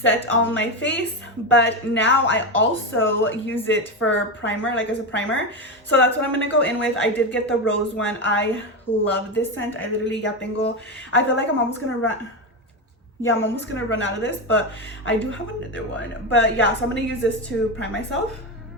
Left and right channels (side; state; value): both; normal; correlation 0.14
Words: on my face, but now I also use it for primer, like as a primer. So that's what I'm gonna go in with. I did get the rose one. I love this scent. I literally ya tengo, I feel like I'm almost gonna run. Yeah, I'm almost gonna run out of this, but I do have another one. But yeah, so I'm gonna use this to prime myself.